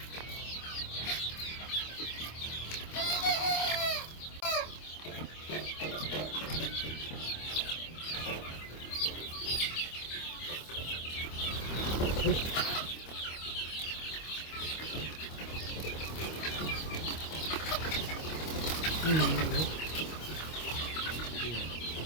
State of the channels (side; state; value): right; late; 25 ms